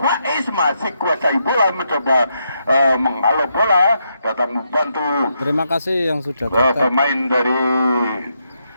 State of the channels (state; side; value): inverted; both; correlation -0.80